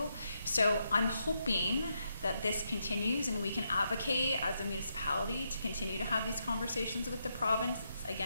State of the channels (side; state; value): both; inverted; correlation -0.81